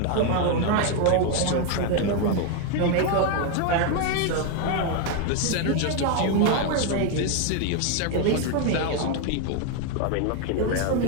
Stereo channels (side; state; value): both; different; correlation 0.01